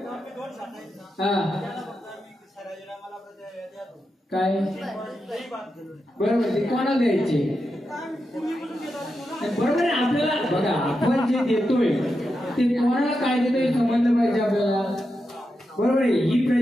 हा काय बरोबर ते कोणाला द्यायचे? बरोबर आहे. आपल्याला बघा, आपण जे देतोय ते कोणाला काय देतोय समजलं पाहिजे आपल्याला, बरोबर आहे. ही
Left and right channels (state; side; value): normal; both; correlation 0.88